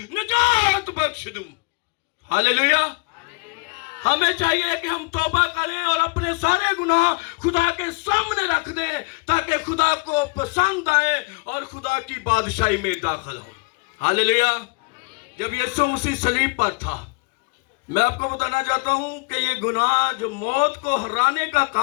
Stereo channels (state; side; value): quieter; right; 30.1 dB